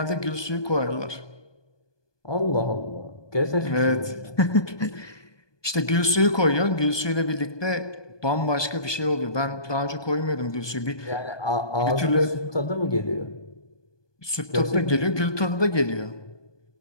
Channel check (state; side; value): late; right; 1.2 ms